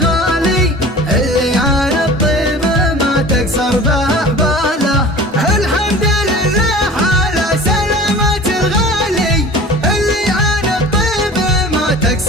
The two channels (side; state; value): both; normal; correlation 0.41